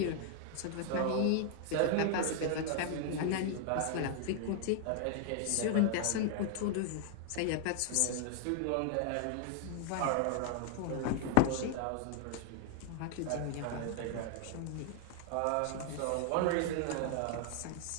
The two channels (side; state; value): both; different; correlation 0.00